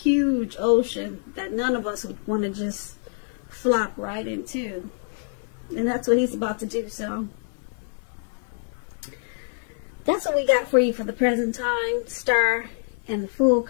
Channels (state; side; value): silent; right; digital silence